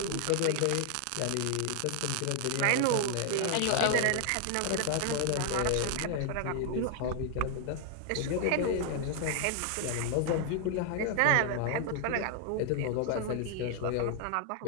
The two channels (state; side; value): different; both; correlation 0.00